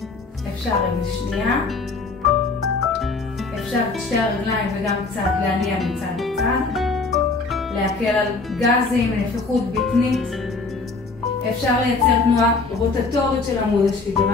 אפשר רגל שנייה, אפשר את שתי הרגליים וגם קצת להניע מצד לצד, להקל על גזים, נפיחות בטנית. אפשר לייצר תנועה רוטטורית של עמוד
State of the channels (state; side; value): quieter; right; 3.9 dB